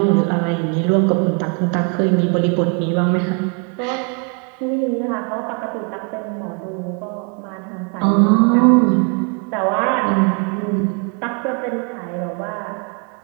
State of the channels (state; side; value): quieter; left; 34.8 dB